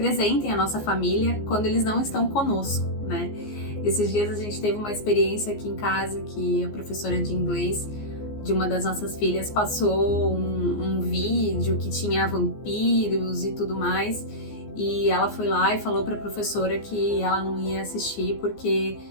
a nossa família quando eles não estão conosco, né? Esses dias a gente teve uma experiência aqui em casa que a professora de inglês de uma das nossas filhas passou um vídeo que tinha vampiros e tudo mais, e ela foi lá e falou para a professora que ela não ia assistir porque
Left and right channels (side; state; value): right; late; 14 ms